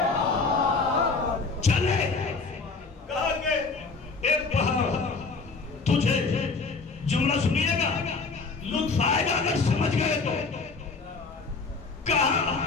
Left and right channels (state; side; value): quieter; right; 4.2 dB